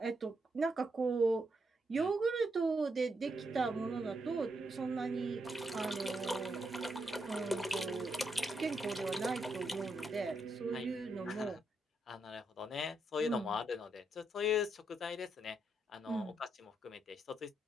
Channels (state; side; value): normal; both; correlation 0.80